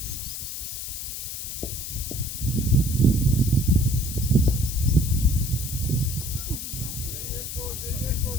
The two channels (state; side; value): noise; left; hiss, 6 dB below the sound